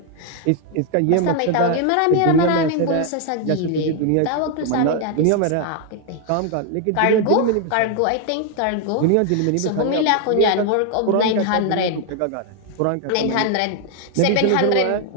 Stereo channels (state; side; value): different; both; correlation 0.00